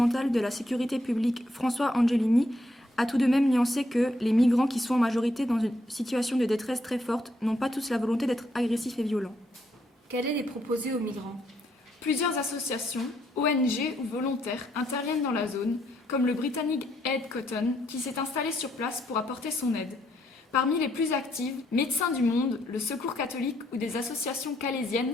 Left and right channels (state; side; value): normal; both; correlation 0.74